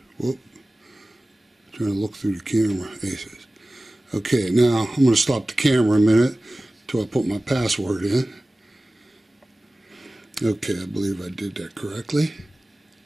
Whoop. Trying to look through the camera. Aces. Okay, now I'm going to stop the camera a minute until I put my password in. Okay, I believe I did that correctly.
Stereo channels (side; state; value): both; normal; correlation 0.97